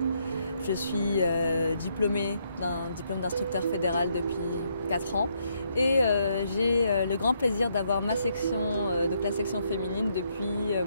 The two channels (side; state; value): both; inverted; correlation -0.75